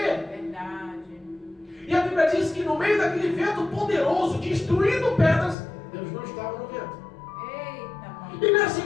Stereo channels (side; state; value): right; drops out; at 5.6 s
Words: Verdade. E a Bíblia diz que no meio daquele vento poderoso, destruindo pedras, Deus não estava no vento. Eita, E na